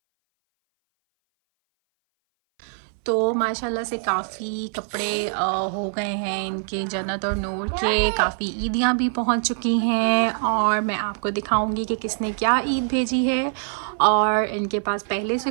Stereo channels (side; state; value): left; silent; 59 dB below the other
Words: तो माशाल्लाह से काफ़ी कपड़े हो गए हैं इनके। जन्नत और नूर के काफ़ी ईदियाँ भी पहुंच चुकी हैं और मैं आपको दिखाऊंगी कि किसने क्या ईद भेजी है और इनके पास पहले से